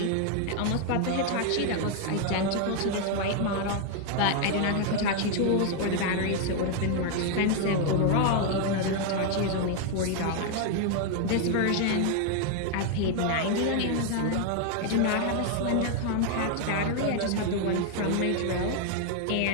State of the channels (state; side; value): different; both; correlation 0.00